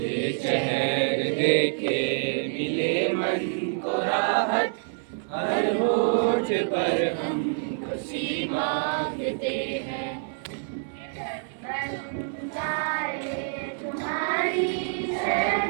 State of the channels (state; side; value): silent; left; 60 dB below the other